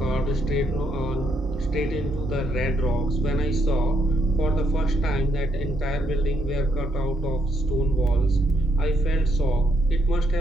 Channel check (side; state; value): both; normal; correlation 0.76